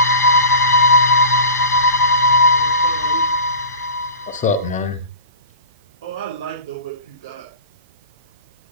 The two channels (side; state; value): both; inverted; correlation -0.35